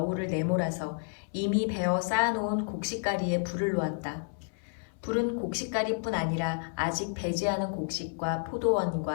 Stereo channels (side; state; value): right; silent; 58 dB below the other